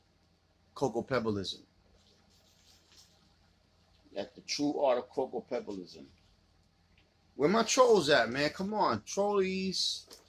cocoa pebbleism. At the true art of cocoa pebbleism. Where my trolls at, man? Come on, trollies.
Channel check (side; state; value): both; identical; correlation 1.00